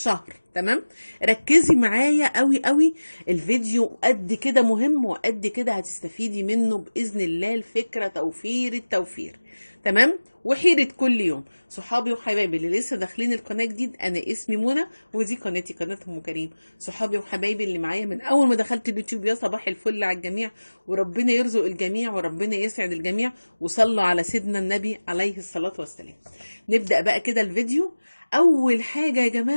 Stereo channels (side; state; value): both; inverted; correlation -1.00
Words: تمام؟ ركزي معايا قوي قوي. الفيديو قد كده مهم وقد كده هتستفيدي منه بإذن الله. الفكرة توفير التوفير، تمام؟ وحيرة كل يوم. صحابي وحبايبي اللي لسه داخلين القناة جديد، أنا اسمي منى ودي قناتي، قناة أم كريم. صحابي وحبايبي اللي معايا من أول ما دخلت اليوتيوب، يا صباح الفل على الجميع. وربنا يرزق الجميع وربنا يسعد الجميع. وصلوا على سيدنا النبي عليه الصلاة والسلام. نبدأ بقى كده الفيديو. أول حاجة يا